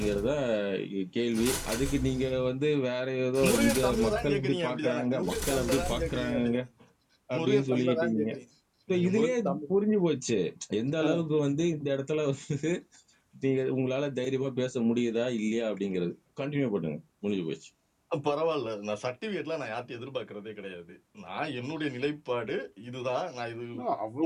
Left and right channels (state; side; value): identical; both; correlation 1.00